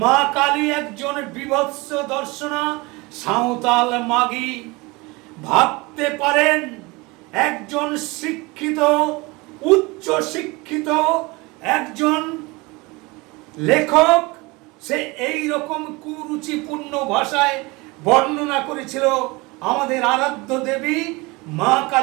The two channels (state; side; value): quieter; left; 24.6 dB